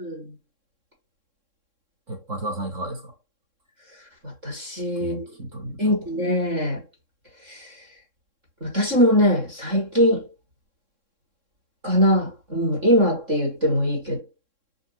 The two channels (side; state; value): left; late; 3.6 ms